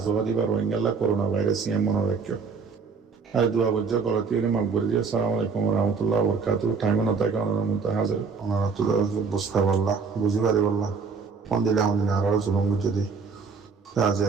জবা দিবার রোহিঙ্গাল্লা করোনা ভাইরাস ইয়ে মনে রাখিও আর দুয়া বজ্জা গলতি হলে মাকবর দিয়ে আসসালামু আলাইকুম রহমতুল্লাহ বরকাত টাইমে না থাকে ওনার মধ্যে হাজার ওনারা তো বুঝতে পারলা বুঝি পারি বললা ফোন দিলে আমাদের আরো জুলুম যদি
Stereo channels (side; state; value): left; quieter; 5.2 dB